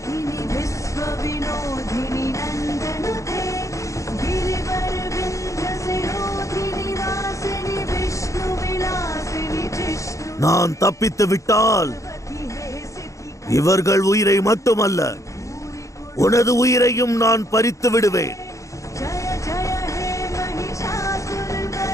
நான் தப்பித்து விட்டால் இவர்கள் உயிரை மட்டுமல்ல, உனது உயிரையும் நான் பறித்து விடுவேன்.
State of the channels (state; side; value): late; right; 0.15 ms